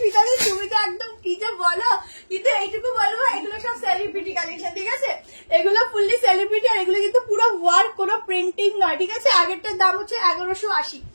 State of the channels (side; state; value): both; inverted; correlation -1.00